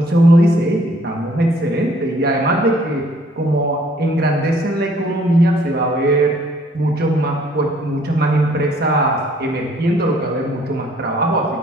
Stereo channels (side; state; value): both; normal; correlation 0.61